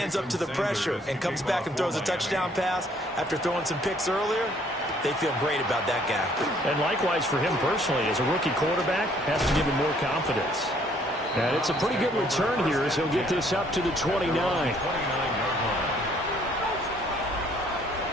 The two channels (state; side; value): normal; both; correlation 0.63